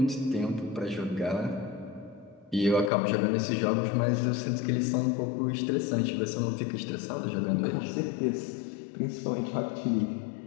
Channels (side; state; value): right; drops out; at 2.9 s